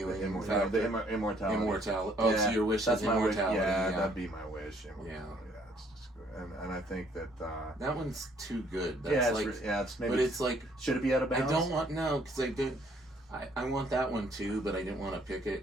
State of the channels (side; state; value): both; normal; correlation 0.64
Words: Immortality. Immortality. Oh, yeah, so your wish is immortality. Yeah, that'd be my wish. Yeah. It's just good. And I think that. That one's too good. That's it's maybe. But it's like. Should it be out of bounds? I don't want because I did. I want that one too, but I didn't want to pick